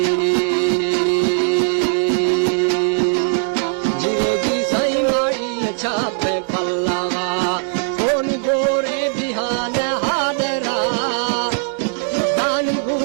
जी सही माड़ी अच्छा पे पल्लावा कौन गोरे बिहान हादरा दान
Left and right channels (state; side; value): silent; left; digital silence